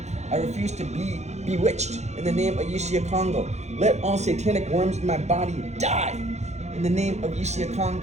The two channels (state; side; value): late; left; 0.33 ms